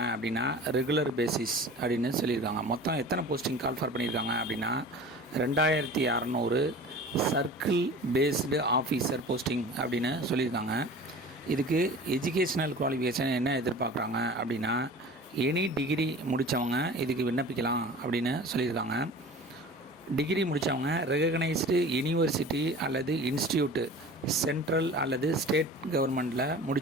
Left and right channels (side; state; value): both; normal; correlation 0.39